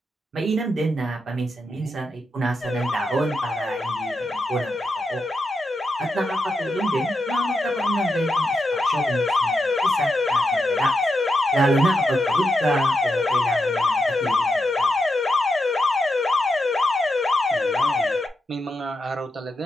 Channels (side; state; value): both; normal; correlation 0.85